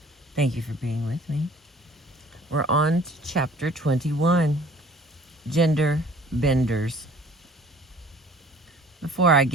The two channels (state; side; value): normal; both; correlation 0.52